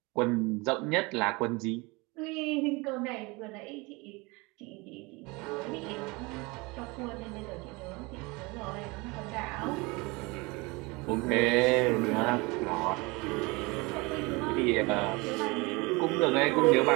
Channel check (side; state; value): left; quieter; 25.7 dB